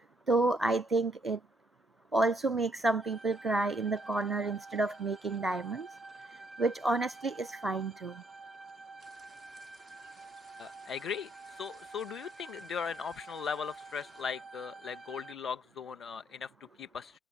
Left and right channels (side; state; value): both; normal; correlation 0.70